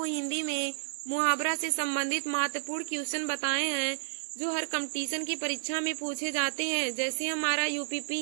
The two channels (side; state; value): left; silent; digital silence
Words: हिंदी में मुहावरा से संबंधित महत्वपूर्ण क्वेश्चन बताए हैं जो हर कंपटीशन की परीक्षा में पूछे जाते हैं। जैसे हमारा